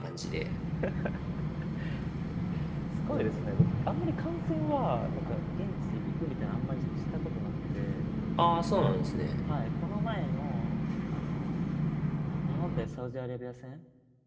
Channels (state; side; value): identical; both; correlation 1.00